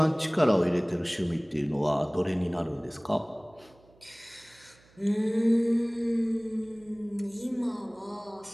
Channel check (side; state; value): right; noise; hum, 29 dB below the sound